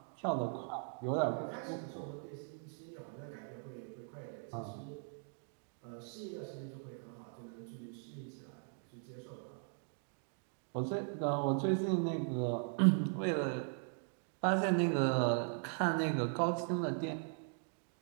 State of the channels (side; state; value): left; silent; 52 dB below the other